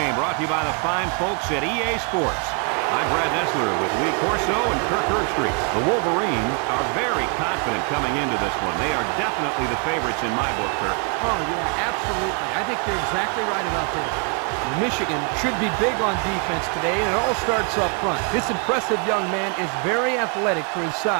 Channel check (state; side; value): quieter; left; 36.4 dB